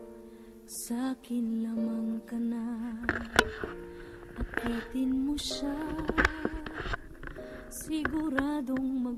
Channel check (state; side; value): identical; both; correlation 1.00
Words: sa'kin lamang ka na. Akitin mo siya, siguradong